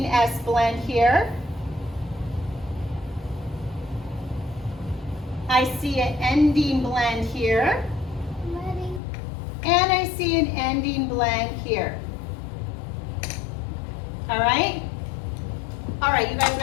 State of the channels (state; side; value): drops out; right; at 9.0 s